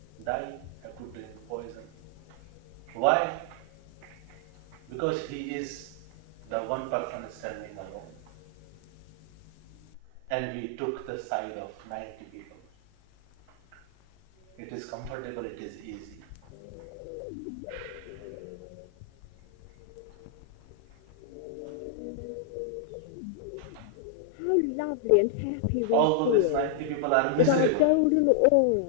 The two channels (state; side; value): different; both; correlation 0.00